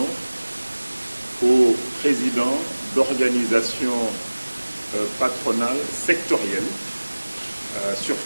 aux présidents d'organisations patronales sectorielles,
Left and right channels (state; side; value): inverted; both; correlation -1.00